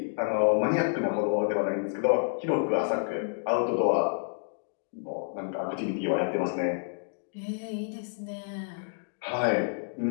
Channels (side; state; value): right; silent; digital silence